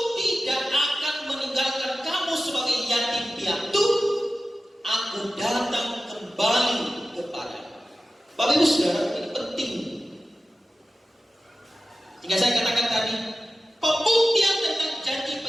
tidak akan meninggalkan kamu sebagai yatim piatu, aku datang kembali kepada. Bapak Ibu Saudara, ini penting. Jika saya katakan tadi, pembuktian tentang janji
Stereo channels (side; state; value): both; normal; correlation 0.94